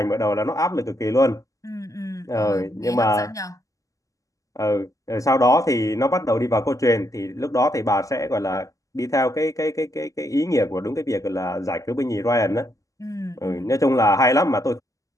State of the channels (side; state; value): right; late; 0.16 ms